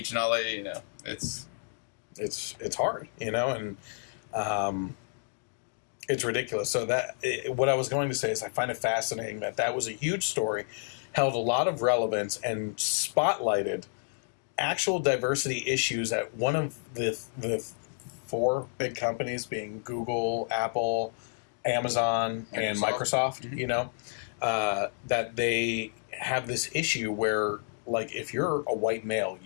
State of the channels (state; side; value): silent; right; digital silence